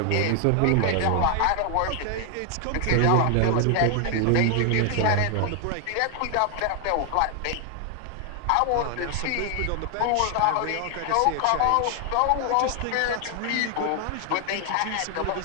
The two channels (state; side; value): different; both; correlation 0.00